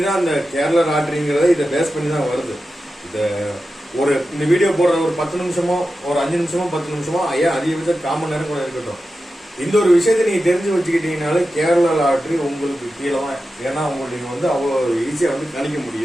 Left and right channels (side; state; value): both; normal; correlation 0.92